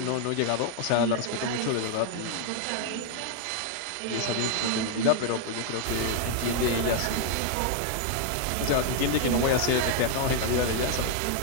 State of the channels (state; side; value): different; both; correlation 0.00